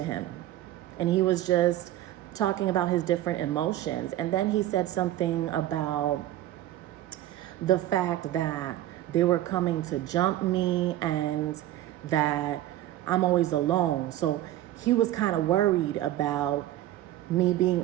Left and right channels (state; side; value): quieter; left; 13.8 dB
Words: him, and he was just talking about his different emotions. And then he said something about the fact that they were coming to jump me and that I'm always alone. So he was kind of worried about me being